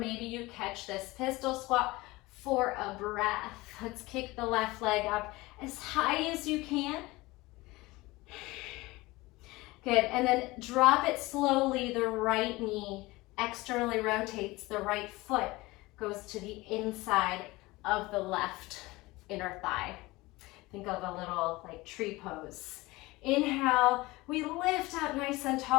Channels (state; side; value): quieter; right; 21.0 dB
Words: you catch this pistol squat for a breath. Let's kick the left leg up as high as you can. Good, and then drop it slowly. The right knee externally rotates. The right foot goes to the inside of the left inner thigh. Think of a little like tree pose. Inhale, we lift up nice and